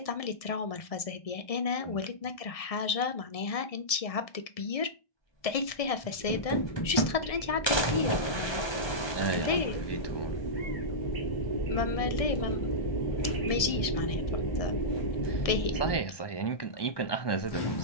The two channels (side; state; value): right; late; 1.7 ms